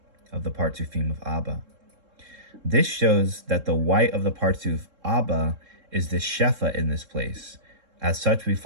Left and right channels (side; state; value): left; late; 3.7 ms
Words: of the Partsufim of Abba. This shows that the white of the Partsuf Abba is the Shefa in this place. As such, we